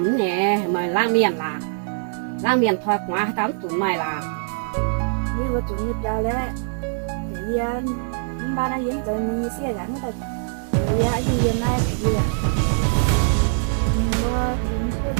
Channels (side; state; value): left; silent; digital silence